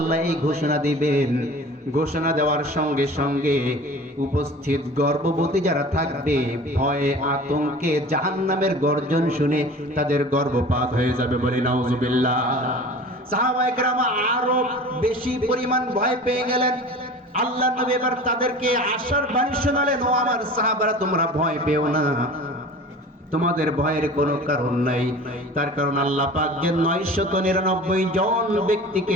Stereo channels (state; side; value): normal; both; correlation 0.40